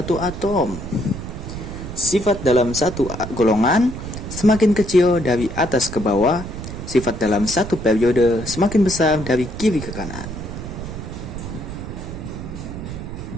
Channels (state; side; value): noise; right; rumble, 9 dB below the sound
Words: atom. Sifat dalam satu golongan semakin kecil dari atas ke bawah. Sifat dalam satu periode semakin besar dari kiri ke kanan.